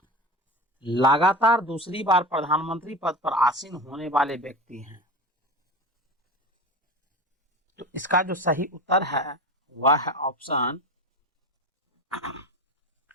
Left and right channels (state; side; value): normal; both; correlation 0.29